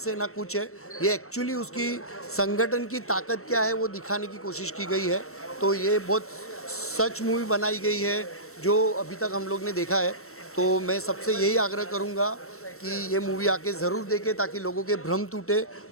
है, ना कुछ है, ये एक्चुअली उसकी संगठन की ताकत क्या है वो दिखाने की कोशिश की गई है। तो ये बहुत सच मूवी बनाई गई है जो अभी तक हम लोग ने देखा है। तो मैं सबसे यही आग्रह करूँगा कि ये मूवी आके ज़रूर देखें, ताकि लोगों के भ्रम टूटे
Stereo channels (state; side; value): late; right; 0.63 ms